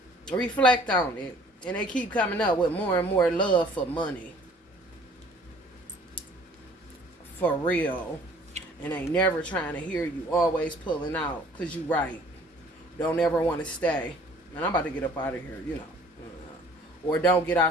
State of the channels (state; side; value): normal; both; correlation 0.54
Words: Reflect on it. And they keep coming up with more and more love for money. For real. And they never trying to hear you. Always pulling out. Because you right. Don't ever want to stay. Man, I'm about to get up out of here, you know. Or don't get